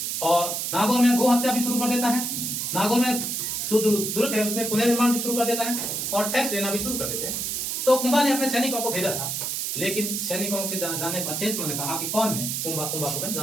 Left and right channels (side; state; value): right; noise; hiss, 2 dB below the sound